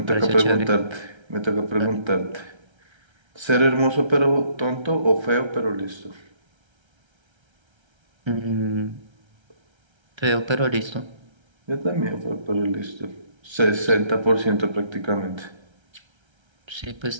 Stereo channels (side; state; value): left; late; 1.3 ms